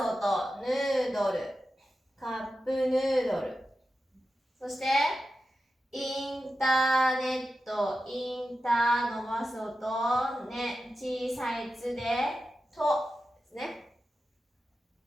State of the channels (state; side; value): normal; both; correlation 0.91